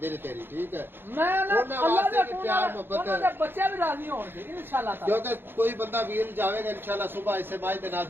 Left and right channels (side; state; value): left; late; 0.10 ms